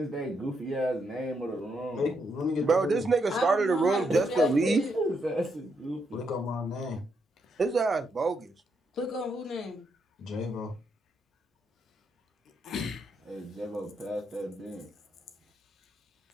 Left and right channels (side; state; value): both; normal; correlation 0.78